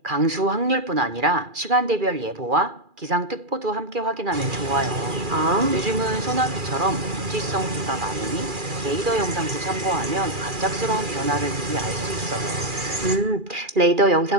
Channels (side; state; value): left; late; 2.4 ms